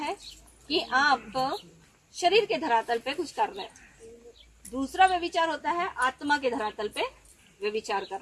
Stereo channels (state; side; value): identical; both; correlation 1.00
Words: कि आप शरीर के धरातल पे कुछ कर रहे हो। दूसरा व्यभिचार होता है आत्मा के धरातल पे व्यभिचार कर